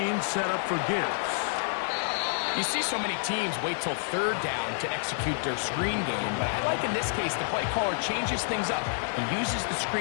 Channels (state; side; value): silent; right; digital silence